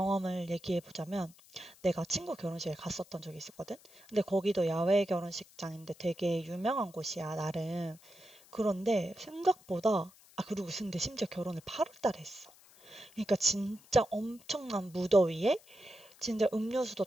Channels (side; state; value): left; noise; hiss, 25 dB below the sound